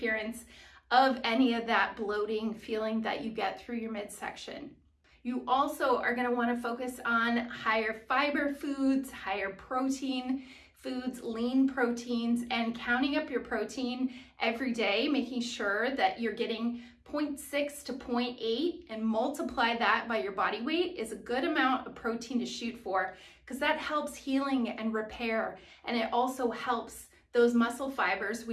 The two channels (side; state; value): both; identical; correlation 1.00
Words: of any of that bloating feeling that you get through your midsection. You also are going to want to focus on higher fiber foods, higher protein foods, lean proteins, and counting up your protein every day, making sure that you're getting 0.6 to 0.8 and multiply that by your body weight is a good amount of protein to shoot for, because that helps healing and repair, and it also helps those muscle fibers